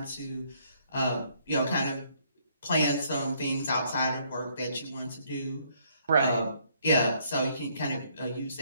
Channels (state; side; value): inverted; both; correlation -0.67